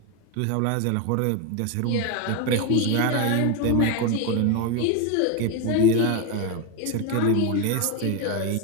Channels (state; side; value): different; both; correlation 0.02